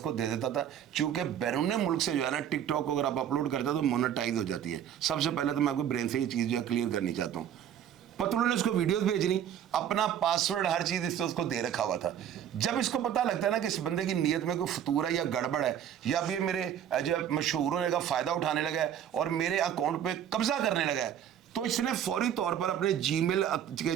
दे देता था। चूंकि बैरून मुल्क से जो है ना टिकटॉक को अगर आप अपलोड करते हो तो मोनेटाइज हो जाती है। सबसे पहले तो मैं आपको ब्रेन से ये चीज़ जो है क्लियर करनी चाहता हूँ। पतलू ने उसको वीडियोस भेजनी, अपना पासवर्ड हर चीज़ इससे उसको दे रखा हुआ था। जब इसको पता लगता है ना कि इस बंदे की नीयत में कोई फतूर है या गड़बड़ है या भी मेरे जो मशहूर होने का फ़ायदा उठाने लगा है और मेरे अकाउंट पे कब्जा करने लगा है, तो इसने फौरी तौर पर अपने जीमेल के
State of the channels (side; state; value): left; quieter; 9.7 dB